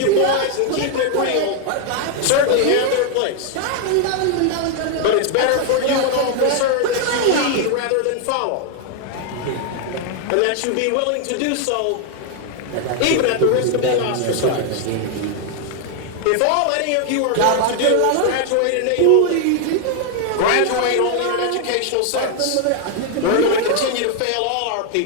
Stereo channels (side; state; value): both; different; correlation 0.00